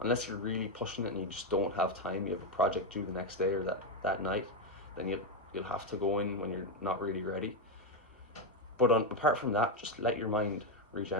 unless you're really pushing it and you just don't have time, you have a project due the next day or that night, then you'll have to go in when you're not really ready. But apart from that, just let your mind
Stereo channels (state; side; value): normal; both; correlation 0.06